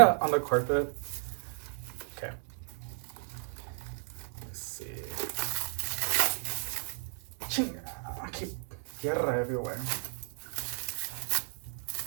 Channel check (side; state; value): left; silent; 56 dB below the other